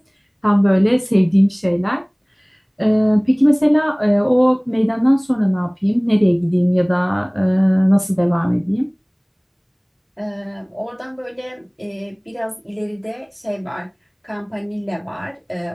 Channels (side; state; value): both; identical; correlation 1.00